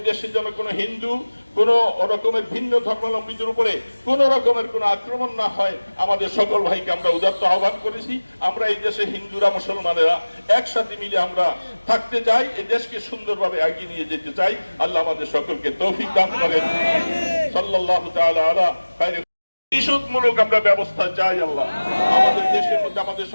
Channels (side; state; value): both; inverted; correlation -1.00